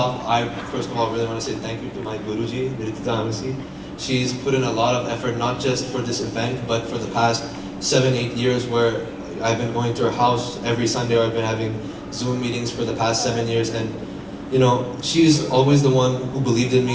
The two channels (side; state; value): both; identical; correlation 1.00